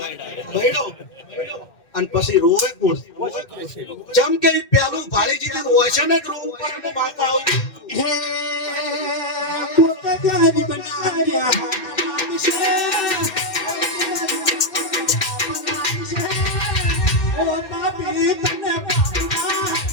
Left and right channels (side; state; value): right; late; 2.1 ms